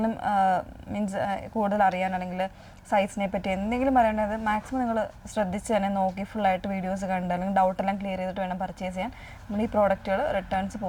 മീൻസ് കൂടുതൽ അറിയാൻ അല്ലെങ്കിൽ സൈസിനെ പറ്റി എന്തെങ്കിലും പറയേണ്ടത് മാക്സിമം നിങ്ങൾ ശ്രദ്ധിച്ച് തന്നെ നോക്കി ഫുള്ളായിട്ട് വീഡിയോസ് കണ്ട് അല്ലെങ്കിൽ ഡൗട്ടെല്ലാം ക്ലിയർ ചെയ്തിട്ട് വേണം പർച്ചേസ് ചെയ്യാൻ. നമ്മൾ ഈ പ്രോഡക്റ്റുകൾ റിട്ടേൺസ്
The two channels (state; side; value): identical; both; correlation 1.00